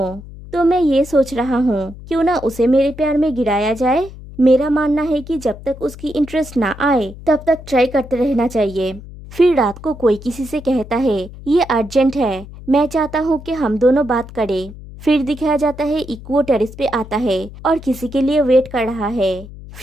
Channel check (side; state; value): left; noise; hum, 16 dB below the sound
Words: तो मैं ये सोच रहा हूँ, क्यों ना उसे मेरे प्यार में गिराया जाए। मेरा मानना है कि जब तक उसकी इंटरेस्ट ना आए तब तक ट्राई करते रहना चाहिए। फिर रात को कोई किसी से कहता है, ये अर्जेंट है, मैं चाहता हूँ कि हम दोनों बात करें। फिर दिखाया जाता है इक्वो टेरेस पे आता है और किसी के लिए वेट कर रहा है।